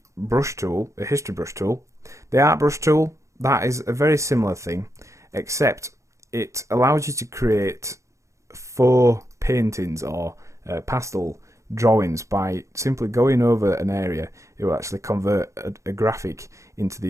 brush tool, a history brush tool. The art brush tool, that is a very similar thing, except it allows you to create faux paintings or pastel drawings by simply going over an area. It will actually convert a graphic into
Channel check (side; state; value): left; late; 0.15 ms